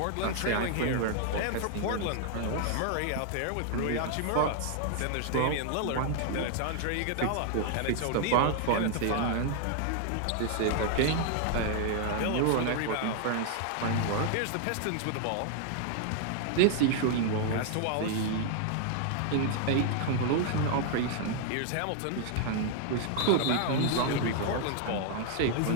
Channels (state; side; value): different; both; correlation 0.00